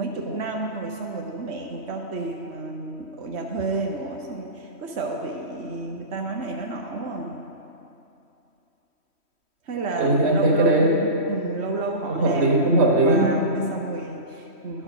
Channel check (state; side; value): late; left; 3.1 ms